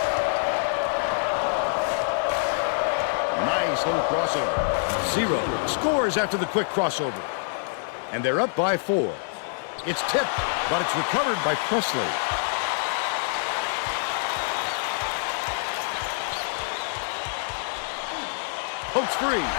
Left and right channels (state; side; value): silent; right; digital silence